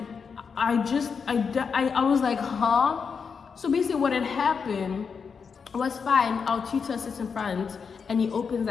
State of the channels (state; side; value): quieter; right; 5.9 dB